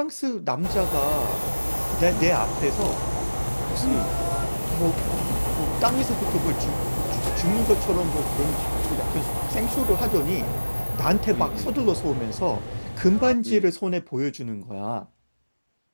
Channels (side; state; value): both; inverted; correlation -1.00